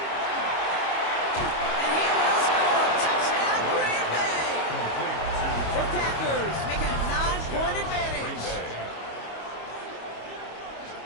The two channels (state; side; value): late; right; 25 ms